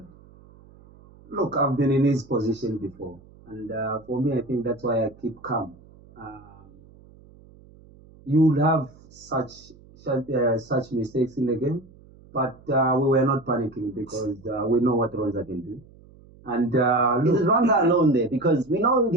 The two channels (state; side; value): noise; right; hum, 25 dB below the sound